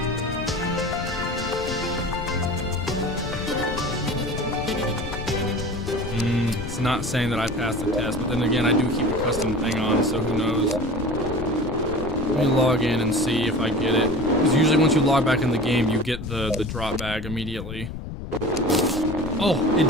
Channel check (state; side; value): noise; left; rumble, 8 dB below the sound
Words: It's not saying that I passed the test, but then again, I do keep a custom thing on, so who knows. Let me log in and see if I get it. Because usually once you log back in the game, you get the drop bag immediately. Oh, it